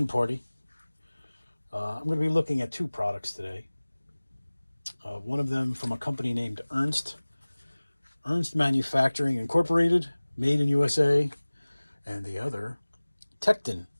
party. I'm going to be looking at two products today. One of them from a company named Ernst Manufacturing Incorporated, made in USA, and the other Tekton,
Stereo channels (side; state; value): both; inverted; correlation -1.00